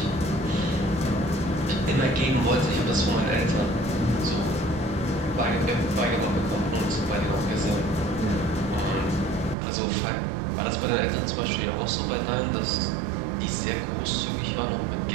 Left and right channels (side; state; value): left; drops out; at 9.6 s